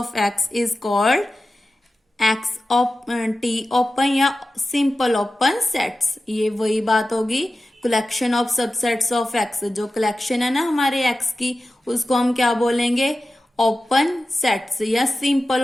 X is called X T open या simple open sets। ये वही बात होगी, collection of subsets of X, जो collection है ना हमारे X की, उसको हम क्या बोलेंगे? ओपन सेट्स या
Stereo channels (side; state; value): both; normal; correlation 0.94